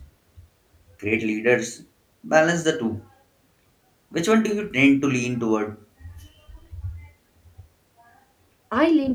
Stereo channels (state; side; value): identical; both; correlation 1.00